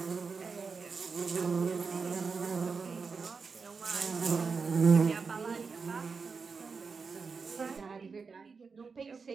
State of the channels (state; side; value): quieter; left; 5.0 dB